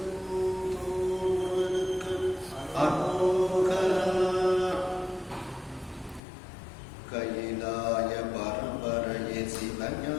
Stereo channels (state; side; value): drops out; right; at 6.2 s